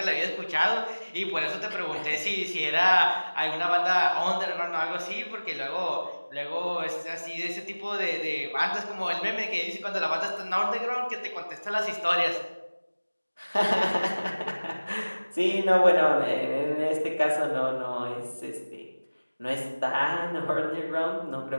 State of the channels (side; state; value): both; inverted; correlation -1.00